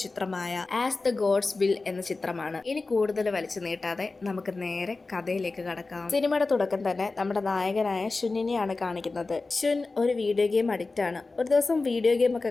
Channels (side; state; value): right; quieter; 3.6 dB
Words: ചിത്രമായ ആസ് ദ ഗോഡ്സ് വിൽ എന്ന ചിത്രമാണ്. ഇനി കൂടുതൽ വലിച്ചു നീട്ടാതെ നമുക്ക് നേരെ കഥയിലേക്ക് കടക്കാം. സിനിമയുടെ തുടക്കം തന്നെ നമ്മുടെ നായകനായ ഷുന്നിനെയാണ് കാണിക്കുന്നത്. ഷുൻ ഒരു വീഡിയോ ഗെയിം അഡിക്റ്റ് ആണ്. ഒരു ദിവസം വീഡിയോ ഗെയിം